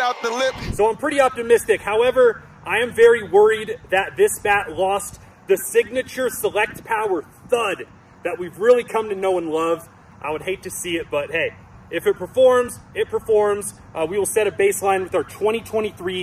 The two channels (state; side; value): identical; both; correlation 1.00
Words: the lip. So I'm pretty optimistic. However, I am very worried that this bat lost the signature Select Pwr thud that we've really come to know and love. I would hate to see it, but hey, if it performs, it performs. We will set a baseline with our